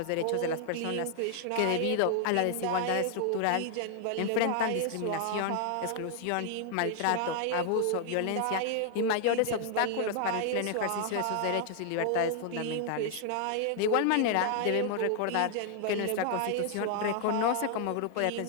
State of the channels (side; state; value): both; different; correlation 0.00